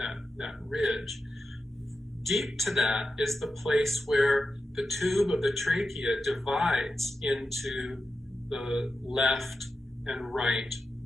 ridge. Deep to that is the place where the tube of the trachea divides into the left and right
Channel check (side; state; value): both; normal; correlation 0.91